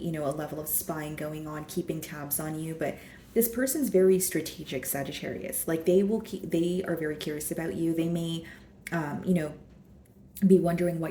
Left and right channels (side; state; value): both; identical; correlation 1.00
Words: a level of spying going on, keeping tabs on you, but this person's very strategic, Sagittarius. Like they are very curious about you. They may, be wondering